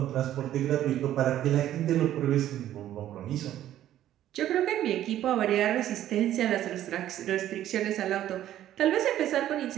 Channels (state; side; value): quieter; left; 12.3 dB